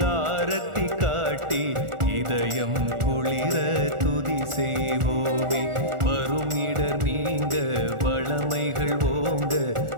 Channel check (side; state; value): left; late; 1.4 ms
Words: ஆரத்தி காட்டி இதயம் குளிர துதி செய்வோமே. வரும் இடர் நீங்க வளமைகள் ஓங்க